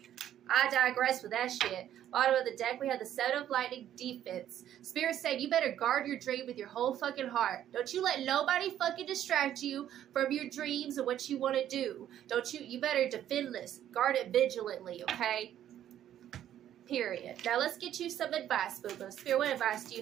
I digress with that shit. Bottom of the deck, we have the Seven of Lightning, defense. Spirit said you better guard your dream with your whole fucking heart. Don't you let nobody fucking distract you from your dreams and what you want to do. You better defend this. Guard it vigilantly, okay? Period. Now let's get you some advice, boo-boo. Spirit, what advice do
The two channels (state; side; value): quieter; left; 11.2 dB